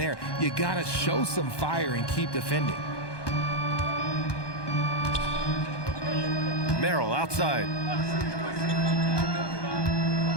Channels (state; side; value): late; right; 1.2 ms